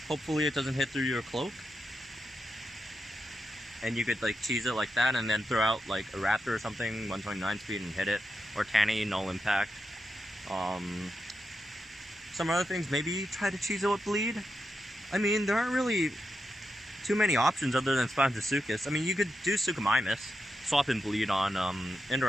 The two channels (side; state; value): both; normal; correlation 0.87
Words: Hopefully it doesn't hit through your cloak. And you could like cheese it like that and then throw out like a Raptor or something, 129 speed and hit it. Or Tanny, null impact. Some other things, maybe try to cheese it with bleed. I mean, there aren't really too many options other than Spinosuchus. I mean, you could do Suchomimus, swap and bleed on